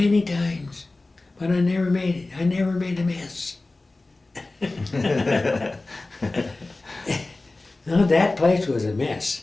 times, but I never made it. I never made a mess. No, that place was a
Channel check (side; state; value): right; quieter; 3.1 dB